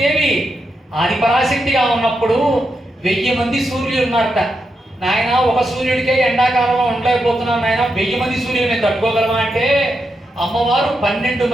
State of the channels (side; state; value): both; normal; correlation 0.85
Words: ఆదిపరాశక్తిగా ఉన్నప్పుడు 1000 మంది సూర్యులు ఉన్నారట. నాయన ఒక సూర్యుడికే ఎండాకాలంలో ఉండలేకపోతున్నాం నాయన, 1000 మంది సూర్యులు మేము తట్టుకోగలమా అంటే అమ్మవారు 12